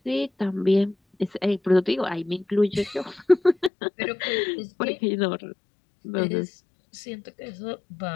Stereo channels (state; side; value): drops out; right; at 3.7 s